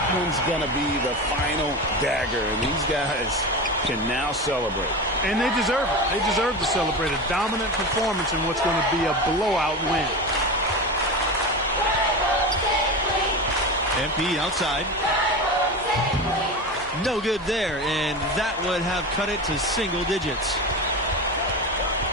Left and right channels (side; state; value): both; normal; correlation 0.24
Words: one's going to be the final dagger, and these guys can now celebrate. And they deserve it. They deserve to celebrate a dominant performance in what's going to be a blowout win. MP outside. No good there, and that would have cut it to single digits.